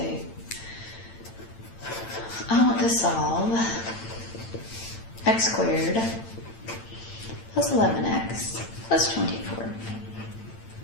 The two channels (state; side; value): late; right; 8.9 ms